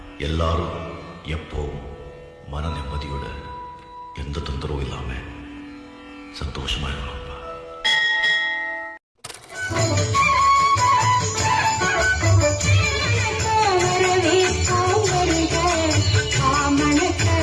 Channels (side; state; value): both; identical; correlation 1.00